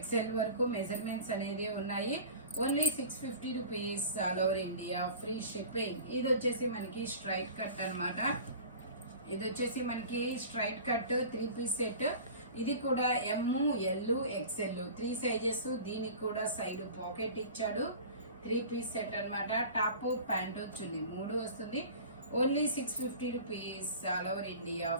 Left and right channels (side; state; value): both; inverted; correlation -0.39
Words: వరకు మెజర్మెంట్స్ అనేది ఉన్నాయి. Only 650 rupees. All over India free shipping. ఇది వచ్చేసి మనకి స్ట్రైట్ కట్ అన్నమాట. ఇది వచ్చేసి మనకి స్ట్రైట్ కట్ 3 పీస్ సెట్. ఇది కూడా ఎమ్, ఎల్, ఎక్స్ఎల్ 3 సైజెస్. దీనికి కూడా సైడ్ పాకెట్ ఇచ్చాడు. 3 పీస్ సెట్ అన్నమాట. టాప్, ప్యాంట్ చున్నీ 3 వస్తుంది. Only 650 rupees. All over India